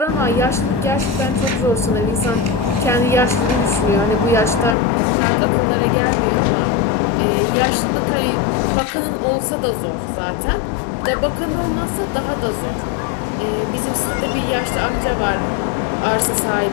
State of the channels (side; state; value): right; drops out; at 4.8 s